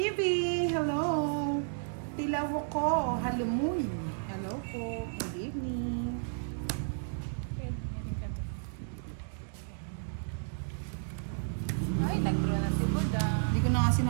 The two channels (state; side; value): silent; left; digital silence